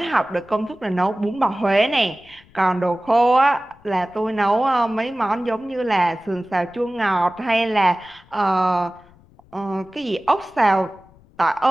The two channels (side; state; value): left; noise; rumble, 28 dB below the sound